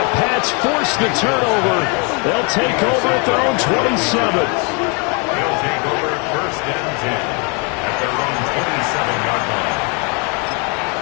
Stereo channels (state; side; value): quieter; right; 34.0 dB